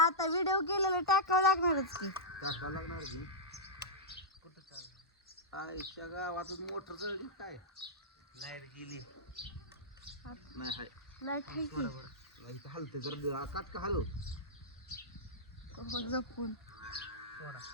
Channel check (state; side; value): normal; both; correlation -0.11